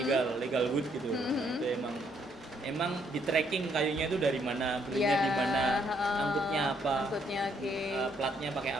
wood gitu. Itu emang di tracking kayunya itu dari mana, belinya di mana, angkutnya apa, Angkutnya oke. platnya pakai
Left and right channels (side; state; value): both; normal; correlation 0.70